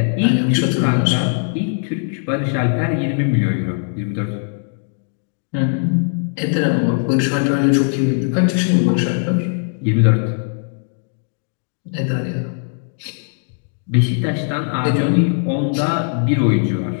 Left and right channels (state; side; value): silent; right; 62 dB below the other